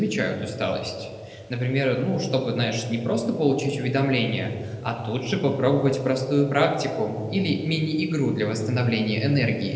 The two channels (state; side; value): identical; both; correlation 1.00